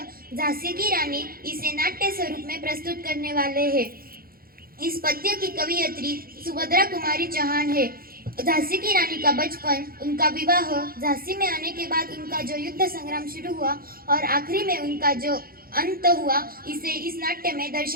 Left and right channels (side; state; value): left; late; 0.43 ms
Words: झांसी की रानी इसे नाट्य स्वरूप में प्रस्तुत करने वाले हैं। इस पद्य की कवियत्री सुभद्रा कुमारी चौहान है। झांसी की रानी का बचपन, उनका विवाह, झांसी में आने के बाद उनका जो युद्ध संग्राम शुरू हुआ और आखिरी में उनका जो अंत हुआ, इसे इस नाट्य में